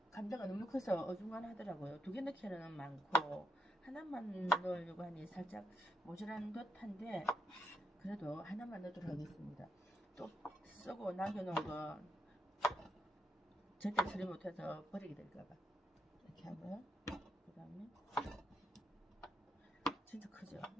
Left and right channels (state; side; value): normal; both; correlation 0.80